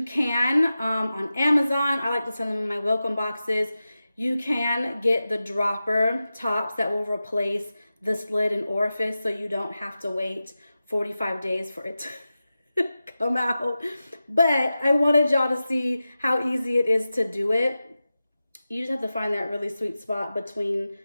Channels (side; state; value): both; inverted; correlation -0.94